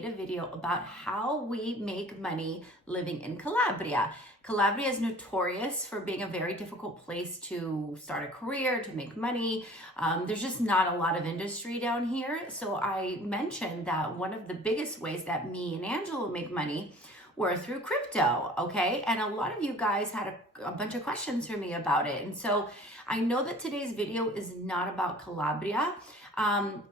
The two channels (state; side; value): normal; both; correlation 0.48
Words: a video about how we make money living in Calabria. Calabria is notorious for being a very difficult place to start a career, to make money. There's just not a lot of industry down here. So I mentioned that one of the biggest ways that me and Angela make money were through crypto, okay? And a lot of you guys had a bunch of questions for me about it. And so I know that today's video is not about Calabria,